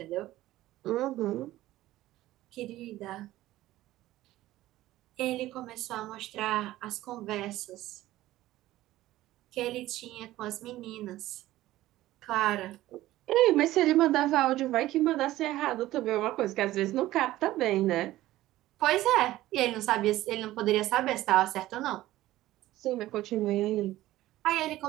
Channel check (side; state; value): left; quieter; 15.7 dB